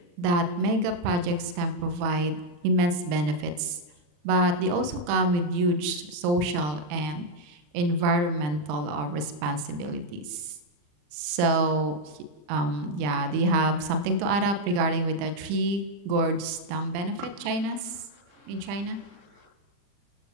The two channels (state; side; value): late; left; 40 ms